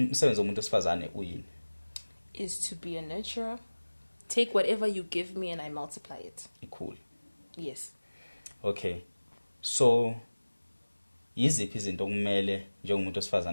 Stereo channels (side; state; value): both; inverted; correlation -1.00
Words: umsebenzi womuntu wesifazane uyini? Is to be a nurturer. Take whatever you give me and I multiply it. Cool. Yes. Okay. So yiziphi izinto okumele njengomuntu